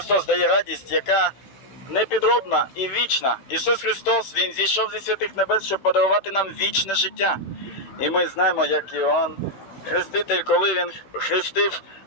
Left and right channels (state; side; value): late; right; 15 ms